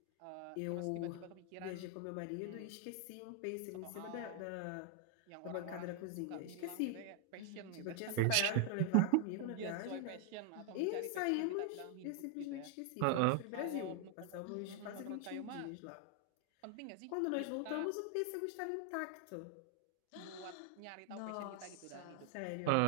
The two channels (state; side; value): different; both; correlation 0.01